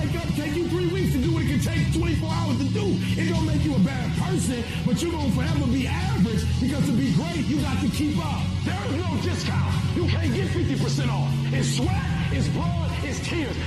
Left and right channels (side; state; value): both; identical; correlation 1.00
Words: up, take you 3 weeks to do what it can take 24 hours to do. It don't make you a bad person, but you're gonna forever be average because to be great, you got to keep up. There is no discount. You can't get 50% off. It's sweat, it's blood, it's tears.